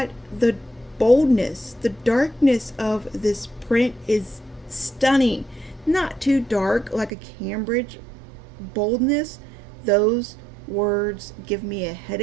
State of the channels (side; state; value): left; drops out; at 7.1 s